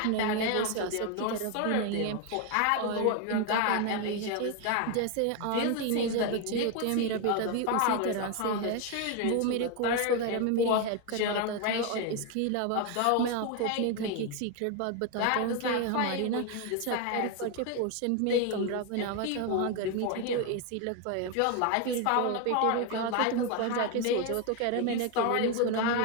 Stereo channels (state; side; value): different; both; correlation 0.01